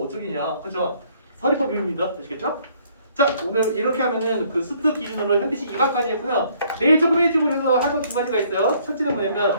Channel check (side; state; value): both; inverted; correlation -0.63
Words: 어쩌기냐. 그죠? 서리법입니다. 아시겠죠? 자, 오늘 이렇게 하면은 그 수트 기준으로 현대식 2강까지 했고요. 내일 조금 일찍 해서 할 거 두 가지가 있어요. 첫째는